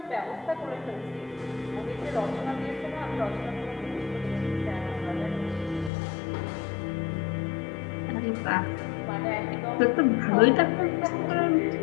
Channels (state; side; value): drops out; right; at 5.9 s